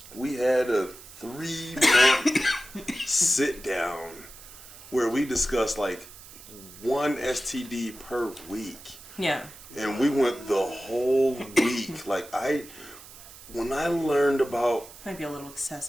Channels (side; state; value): right; noise; hiss, 18 dB below the sound